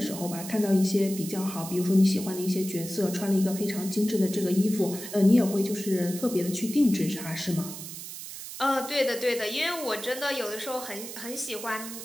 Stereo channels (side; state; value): right; noise; hiss, 10 dB below the sound